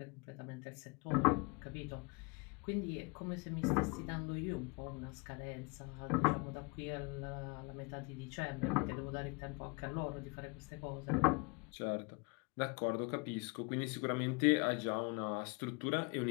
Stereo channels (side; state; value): right; quieter; 30.6 dB